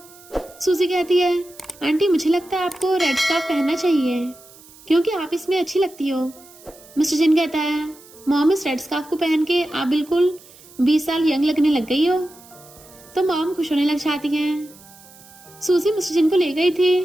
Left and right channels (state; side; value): noise; right; hiss, 23 dB below the sound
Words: सूजी कहती है आंटी मुझे लगता है आपको रेड स्कार्फ पहनना चाहिए क्योंकि आप इसमें अच्छी लगती हो। मिस्टर जिन कहता है मॉम इस रेड स्कार्फ को पहन के आप बिल्कुल 20 साल यंग लगने लग गई हो। तो मॉम खुश होने लग जाती हैं। सूजी मिस्टर जिन को ले गई थी